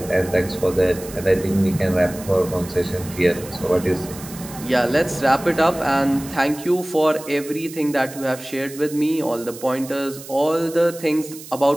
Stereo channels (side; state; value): right; noise; hiss, 15 dB below the sound